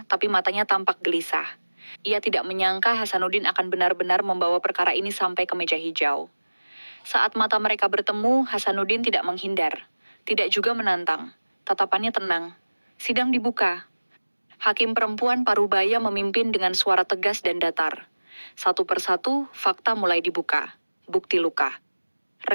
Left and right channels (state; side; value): inverted; both; correlation -1.00